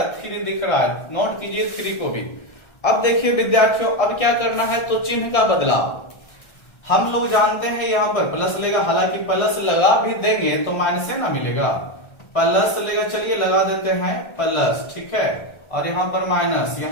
3 दिख रहा है। नोट कीजिए 3 को भी। अब देखिए विद्यार्थियों, अब क्या करना है? तो चिन्ह का बदलाव हम लोग जानते हैं, यहां पर प्लस लेगा। हालांकि प्लस लगा भी देंगे तो माइनस से ना मिलेगा, प्लस लेगा। चलिए लगा देते हैं प्लस, ठीक है। और यहां पर माइनस,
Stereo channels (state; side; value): late; right; 1.3 ms